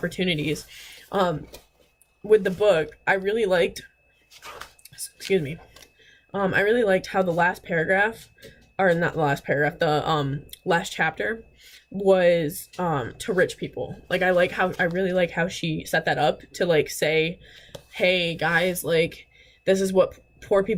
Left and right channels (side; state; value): both; identical; correlation 1.00